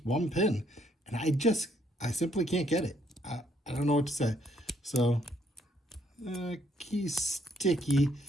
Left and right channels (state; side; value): normal; both; correlation 0.69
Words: one pin. And I simply can't get it. I don't know what to say. So, key sticky,